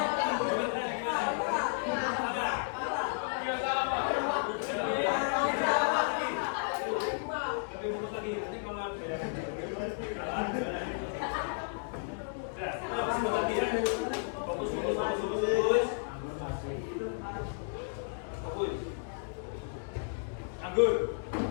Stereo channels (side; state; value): right; silent; digital silence